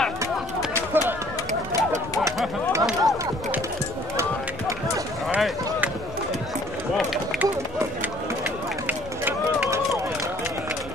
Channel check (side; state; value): both; normal; correlation 0.57